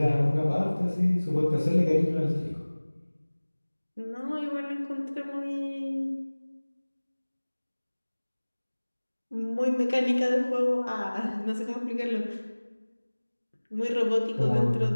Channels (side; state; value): both; inverted; correlation -1.00